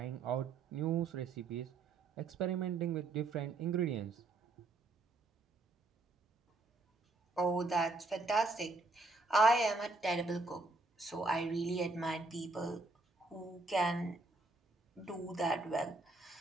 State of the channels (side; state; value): left; quieter; 3.3 dB